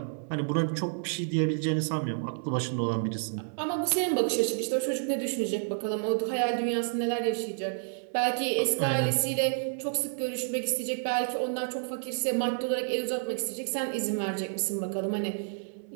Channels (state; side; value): silent; left; 58 dB below the other